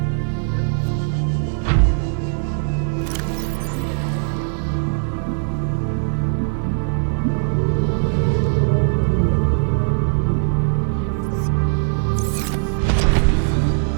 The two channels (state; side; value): silent; left; digital silence